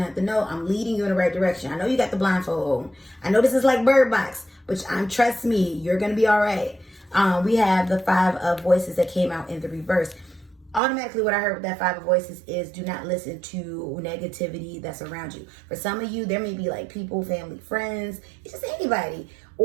to have to know I'm leading you in the right direction. I know you got the blindfold on. I know this is like Bird Box, but trust me, you're going to be all right. We have the 5 of Voices that came out in the reverse. Automatically, what I heard with that 5 of Voices is do not listen to negativity that's around you. For some of you, there may be like people, family, friends, it's just anybody.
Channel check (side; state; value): left; drops out; at 10.8 s